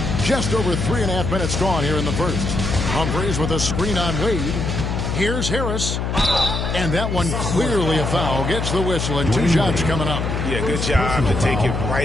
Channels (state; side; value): noise; left; hum, 2 dB below the sound